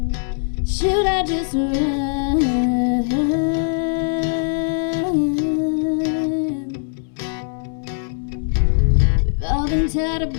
Should I just run? We've all been taught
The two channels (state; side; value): silent; right; 65 dB below the other